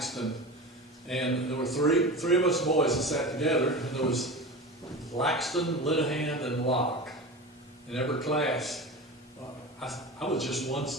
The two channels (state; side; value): normal; both; correlation 0.29